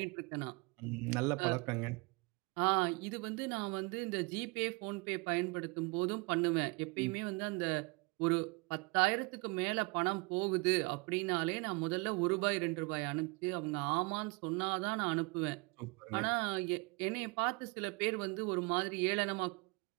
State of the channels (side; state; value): left; quieter; 28.1 dB